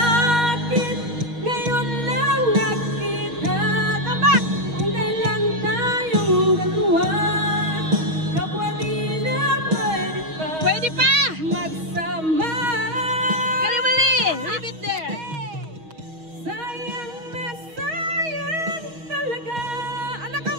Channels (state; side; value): late; left; 6.3 ms